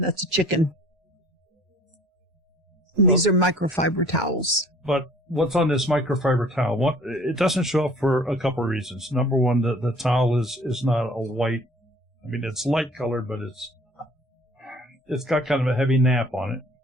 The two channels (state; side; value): normal; both; correlation 0.52